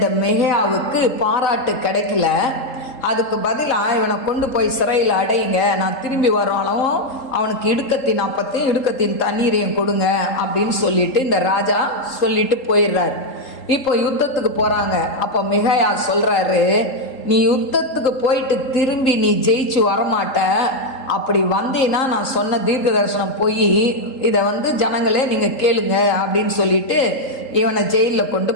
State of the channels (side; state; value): right; late; 3.8 ms